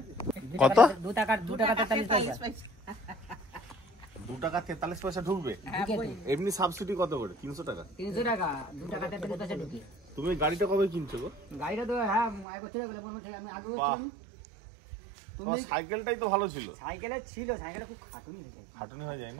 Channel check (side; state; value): left; drops out; at 12.5 s